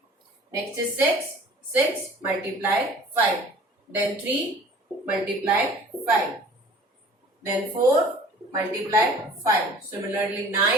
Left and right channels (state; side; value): normal; both; correlation 0.48